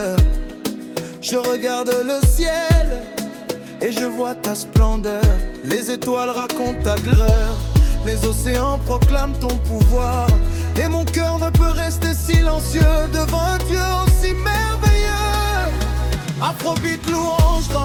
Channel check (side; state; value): both; identical; correlation 1.00